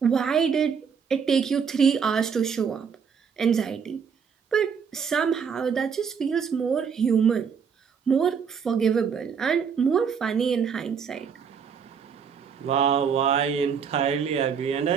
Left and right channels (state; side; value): quieter; left; 6.6 dB